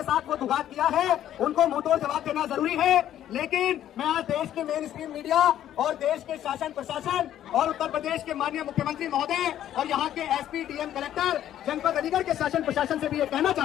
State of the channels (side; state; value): right; quieter; 11.5 dB